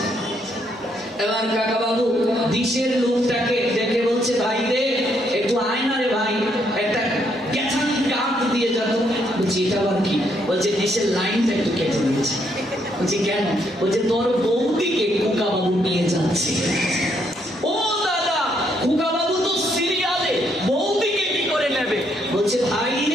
এবার কাকাবাবু দিশের লোকটাকে দেখে বলছে, ভাই রে একটু আয় না রে ভাই, একটা গেছান কাঠ দিয়ে যেত। বলছি এটা আবার কি? বলছে দিশের লাইনটা একটু কেটে দিয়েছে। বলছি কেন? বলছে তোর বৌদিকে খোকাবাবু নিয়ে যাচ্ছে। ও দাদা, খোকাবাবু তো সিরিয়ালে, বৌদিকে কি করে নেবে? বলছে ভাই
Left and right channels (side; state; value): both; normal; correlation 0.73